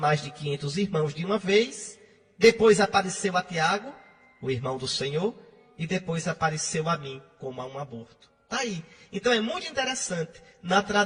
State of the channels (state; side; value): identical; both; correlation 1.00